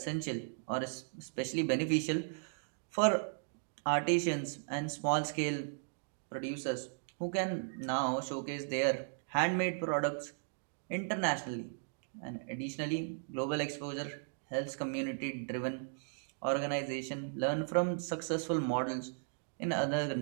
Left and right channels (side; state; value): left; silent; digital silence